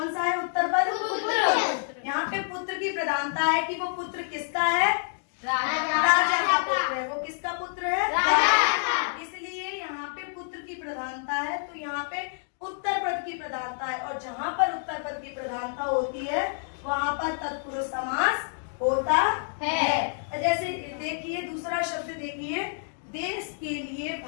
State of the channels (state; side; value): silent; right; digital silence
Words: सा है उत्तर पद? पुत्र। यहाँ पे पुत्र की प्रधानता है कि वो पुत्र किसका है? राजा का पुत्र है। वो किसका पुत्र है? राजा। इसलिए यहाँ पे पुत्र की प्रधानता है, तो यहाँ पे उत्तर पद की प्रधानता है। और जहाँ पर उत्तर पद की प्रधानता होती है वहाँ पर तत्पुरुष समास होता है। जैसे देखिए दूसरा शब्द देखिए, देश के लिए